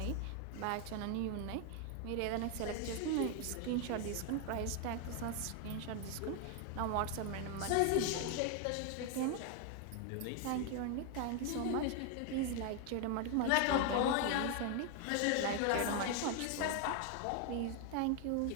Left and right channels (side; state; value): both; different; correlation 0.01